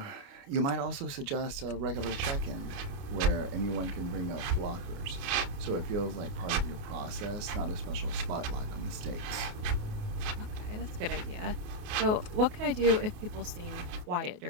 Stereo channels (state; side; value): late; left; 29 ms